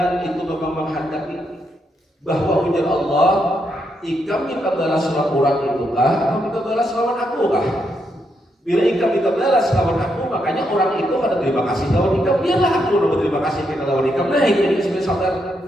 itu memang menghendaki bahwa ujar Allah, jika kita balas lawan orang itu kah, atau kita balas lawan aku kah? Bila ikam kita balas lawan aku, makanya orang itu ada terima kasih lawan ikam. Biarlah aku berterima kasih kita lawan ikam. Nah ini sebenarnya sadar.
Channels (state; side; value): normal; both; correlation 0.80